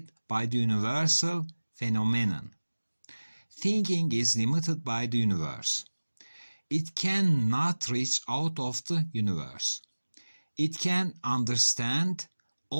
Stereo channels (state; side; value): inverted; both; correlation -1.00